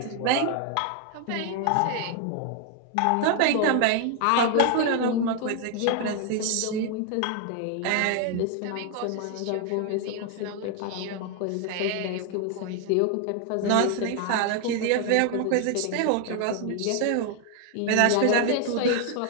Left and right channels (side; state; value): both; different; correlation 0.00